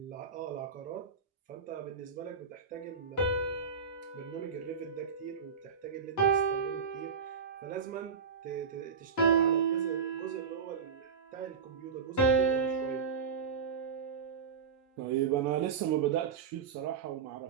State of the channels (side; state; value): left; quieter; 6.0 dB